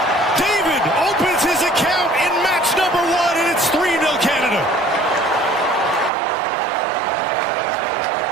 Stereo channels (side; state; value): left; drops out; at 6.1 s